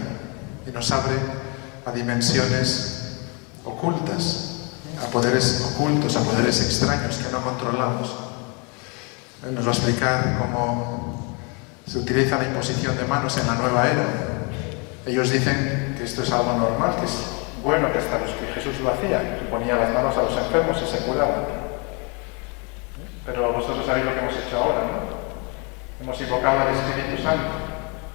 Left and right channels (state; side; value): quieter; right; 32.6 dB